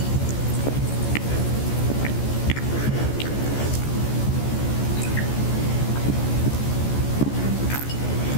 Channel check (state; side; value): late; right; 14 ms